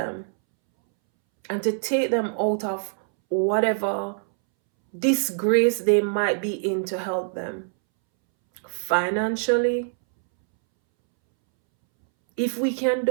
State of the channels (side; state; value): left; silent; 63 dB below the other